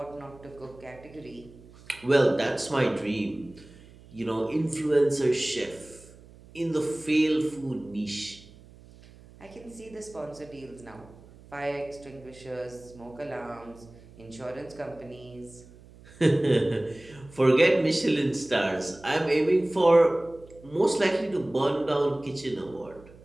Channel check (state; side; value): noise; right; hum, 22 dB below the sound